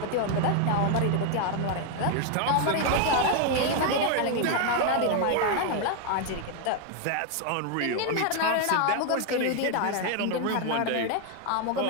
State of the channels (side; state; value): both; different; correlation 0.01